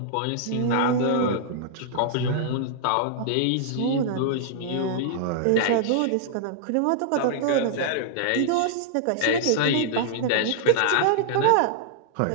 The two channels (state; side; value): different; both; correlation -0.01